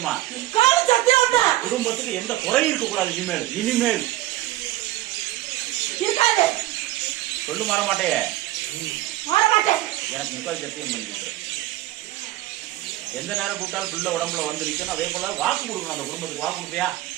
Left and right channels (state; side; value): quieter; left; 16.0 dB